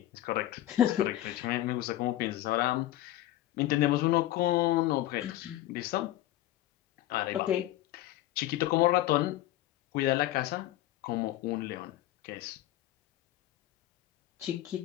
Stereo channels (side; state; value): right; quieter; 14.7 dB